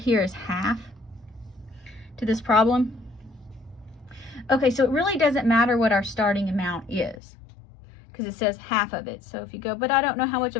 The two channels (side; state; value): right; drops out; at 7.2 s